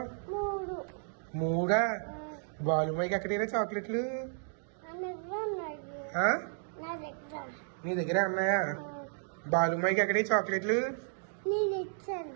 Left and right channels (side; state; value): left; silent; digital silence